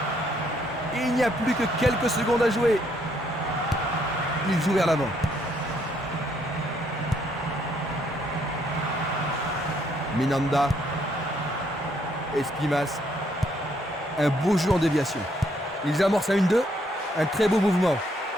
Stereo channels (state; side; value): normal; both; correlation 0.71